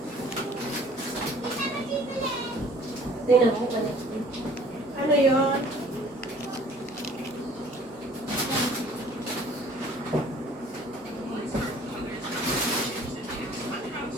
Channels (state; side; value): normal; both; correlation 0.53